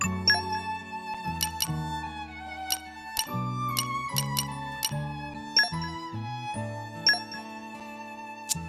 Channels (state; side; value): identical; both; correlation 1.00